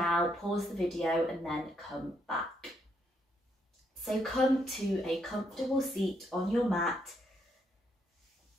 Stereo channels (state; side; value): normal; both; correlation 0.75